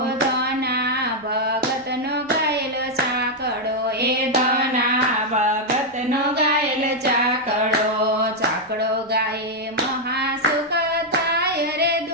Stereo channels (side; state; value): both; normal; correlation -0.01